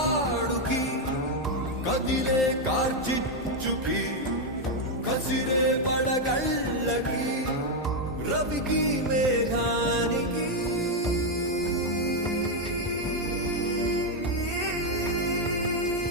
కదిలే కార్చిచ్చుకి కసిరే పడగళ్ళకి రవికి మేఘానికి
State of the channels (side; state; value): both; normal; correlation 0.02